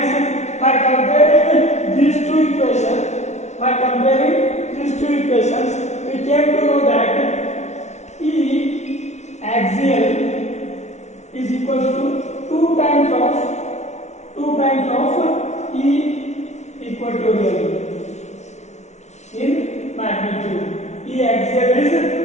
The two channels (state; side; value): late; right; 0.32 ms